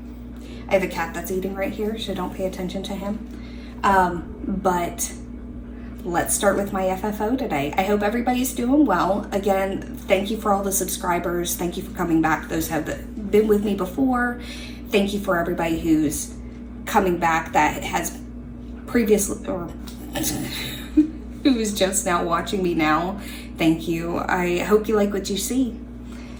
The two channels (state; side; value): identical; both; correlation 1.00